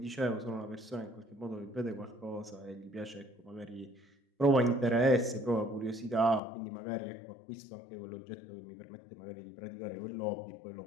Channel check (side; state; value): right; drops out; at 6.4 s